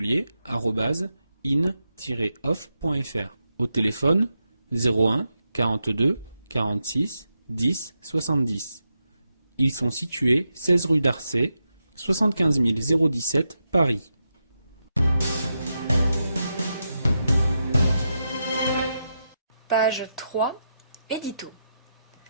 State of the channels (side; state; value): both; inverted; correlation -0.86